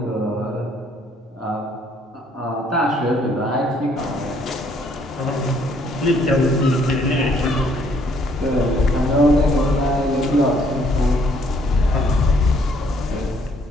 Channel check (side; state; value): both; normal; correlation 0.65